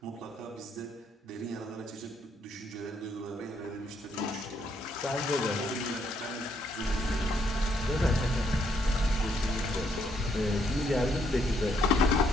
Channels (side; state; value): both; normal; correlation 0.72